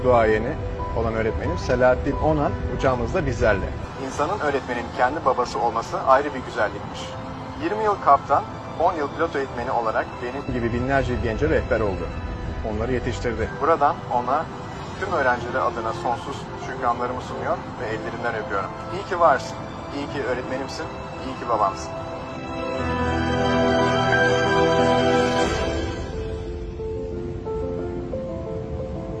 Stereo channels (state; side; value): identical; both; correlation 1.00